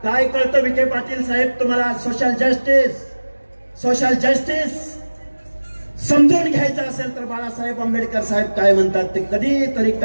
काय कळतं विखे पाटील साहेब तुम्हाला? सोशल जस्टिस समजून घ्यायचं असेल तर बाळासाहेब आंबेडकर साहेब काय म्हणतात ते कधीतरी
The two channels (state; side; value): inverted; both; correlation -1.00